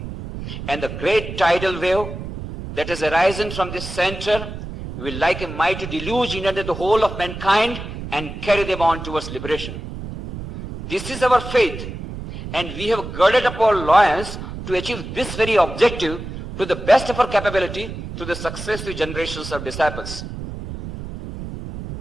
and the great tidal wave that has arisen from this center will like a mighty deluge inundate the whole of mankind and carry them on towards liberation. This is our faith, and we have girded up our loins to achieve this very objective to the best of our capability through the successive generations of disciples.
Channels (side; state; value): right; noise; rumble, 9 dB below the sound